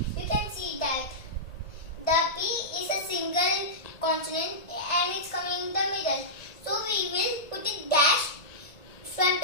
you can see that the P is a single consonant and it's coming in the middle. So we will put it dash front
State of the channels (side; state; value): right; late; 1.6 ms